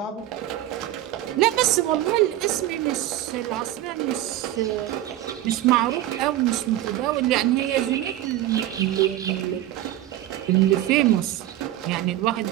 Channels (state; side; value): quieter; left; 13.6 dB